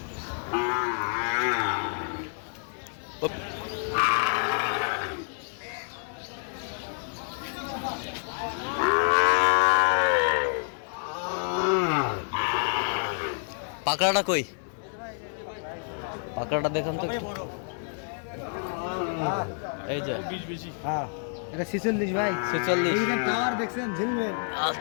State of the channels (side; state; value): right; silent; 55 dB below the other